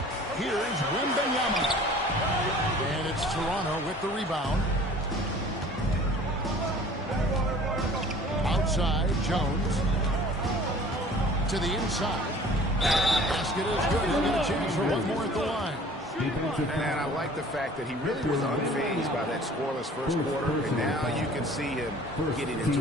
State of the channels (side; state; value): both; normal; correlation 0.48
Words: Here's Wembanyama. And it's Toronto with the rebound. Outside, Jones. To the inside. Basket is good. He'll get a chance for one more at the line. And I like the fact that he really was unfazed by that scoreless first quarter, and now you can see him getting into